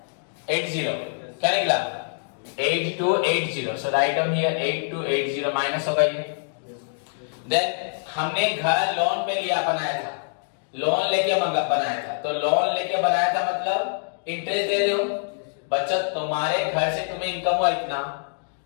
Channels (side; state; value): right; silent; digital silence